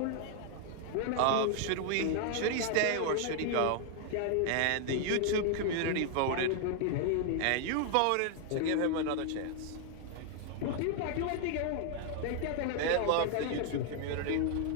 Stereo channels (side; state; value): both; different; correlation 0.00